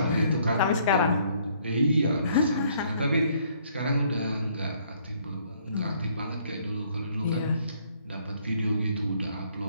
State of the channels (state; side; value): inverted; both; correlation -0.64